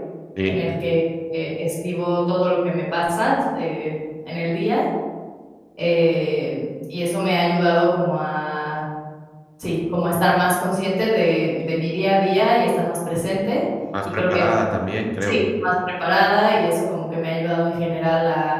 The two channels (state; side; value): identical; both; correlation 1.00